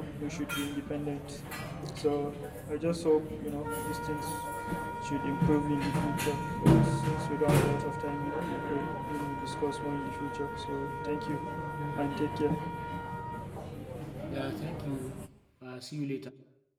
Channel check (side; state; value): both; identical; correlation 1.00